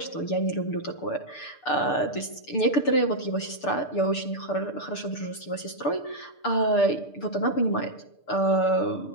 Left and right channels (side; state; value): right; late; 6.8 ms